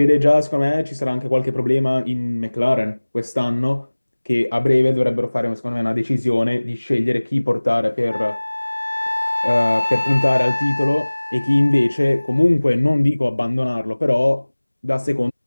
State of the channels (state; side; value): inverted; both; correlation -1.00